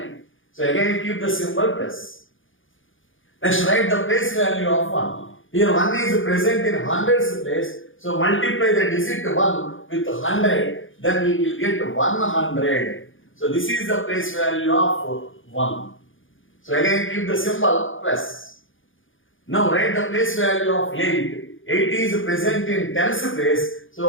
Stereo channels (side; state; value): right; late; 0.58 ms